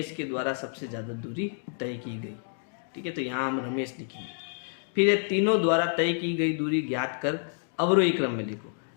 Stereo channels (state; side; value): silent; right; 59 dB below the other